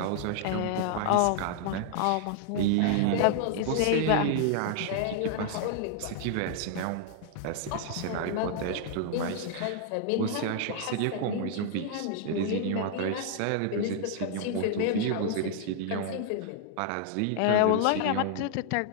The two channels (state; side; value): different; both; correlation -0.01